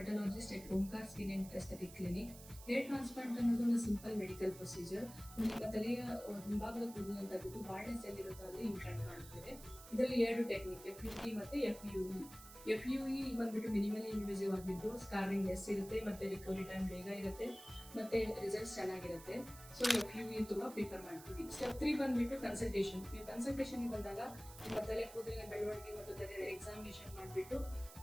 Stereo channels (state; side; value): noise; right; hiss, 16 dB below the sound